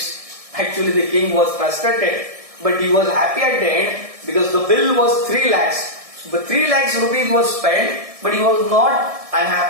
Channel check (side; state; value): left; late; 1.7 ms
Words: Actually the king was frustrated, but he was happy at the end because the bill was 3 lakhs. But 3 lakhs rupees was spent, but he was not